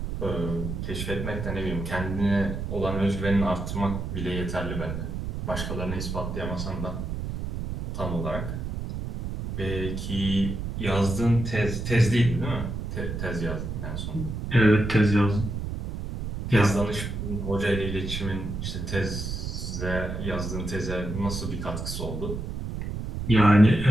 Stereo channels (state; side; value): noise; right; rumble, 5 dB below the sound